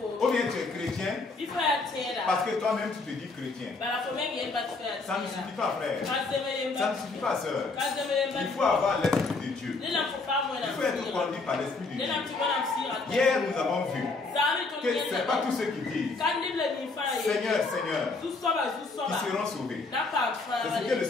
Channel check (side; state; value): right; quieter; 3.7 dB